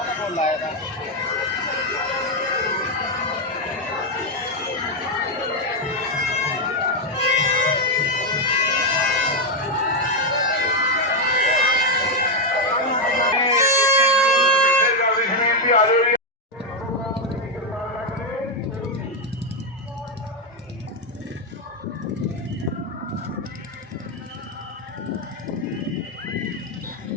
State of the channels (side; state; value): both; normal; correlation 0.03